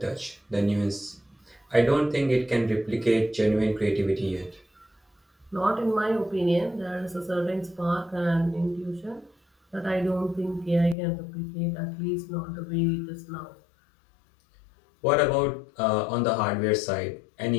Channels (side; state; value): right; drops out; at 11.0 s